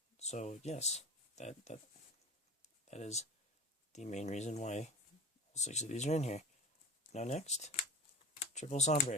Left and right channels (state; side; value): normal; both; correlation 0.32